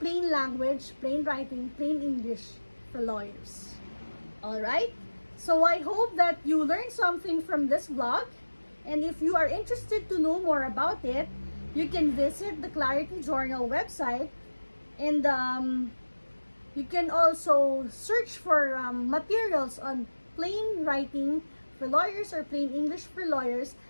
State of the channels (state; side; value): inverted; both; correlation -1.00